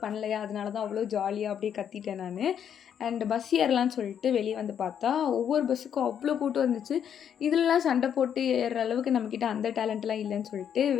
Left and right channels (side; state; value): right; quieter; 8.7 dB